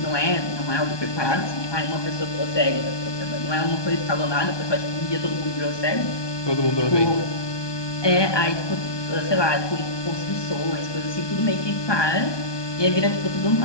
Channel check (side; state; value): right; late; 1.2 ms